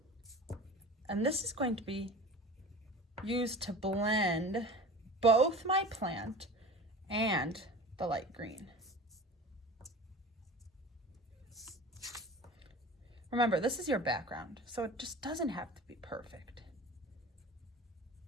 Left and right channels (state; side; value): normal; both; correlation 0.37